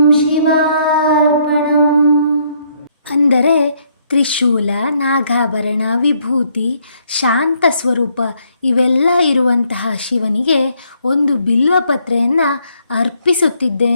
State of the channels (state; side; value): inverted; both; correlation -0.70